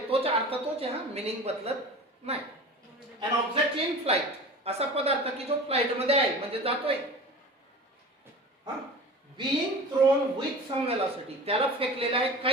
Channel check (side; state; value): both; normal; correlation 0.36